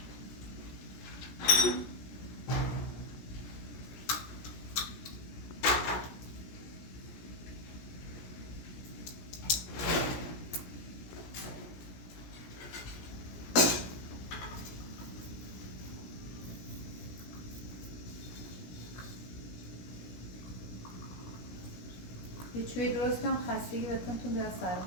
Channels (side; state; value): right; late; 17 ms